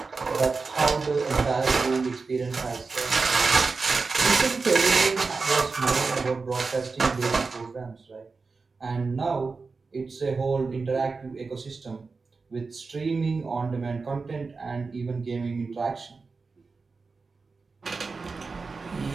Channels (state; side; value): quieter; left; 4.3 dB